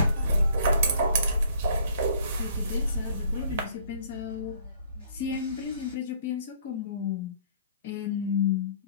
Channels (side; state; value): both; inverted; correlation -0.57